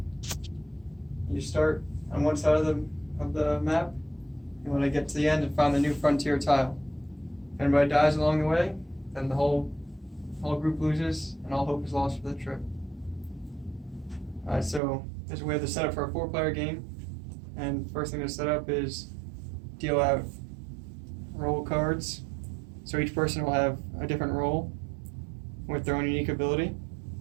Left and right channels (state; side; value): drops out; left; at 14.8 s